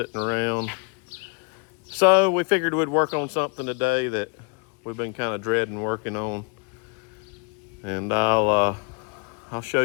around. So we figured we'd work on something today that we've been kind of dreading working on. And I'll show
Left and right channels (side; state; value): right; quieter; 37.0 dB